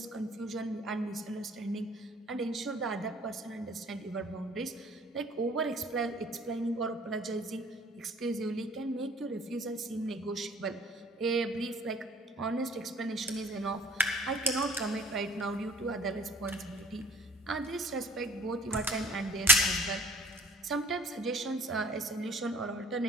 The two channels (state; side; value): normal; both; correlation 0.52